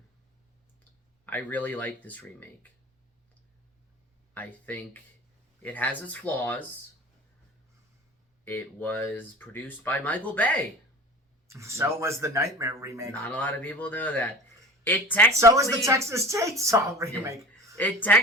I really like this remake. I think it has its flaws. It was produced by Michael Bay. So was the Nightmare remake. Not a lot of people know that. So is the Texas Chainsaw remake. Yeah. It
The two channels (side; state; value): both; normal; correlation 0.38